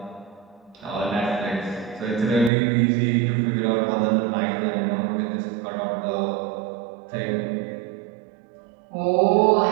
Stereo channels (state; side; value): drops out; left; at 2.5 s